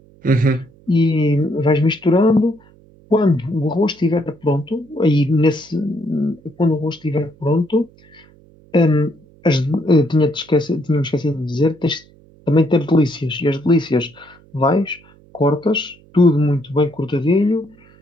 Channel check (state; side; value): noise; right; hum, 28 dB below the sound